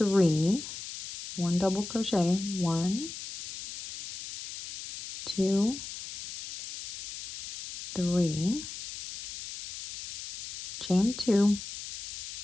1 double crochet, 1, 2, 3, chain 2,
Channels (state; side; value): noise; left; hiss, 10 dB below the sound